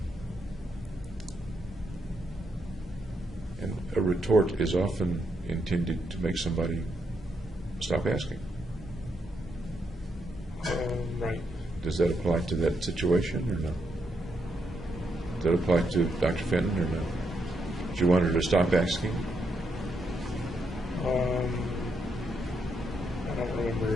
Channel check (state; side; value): normal; both; correlation 0.79